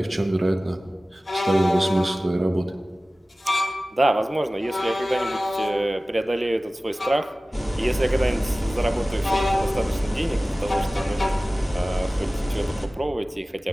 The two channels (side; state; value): both; normal; correlation 0.97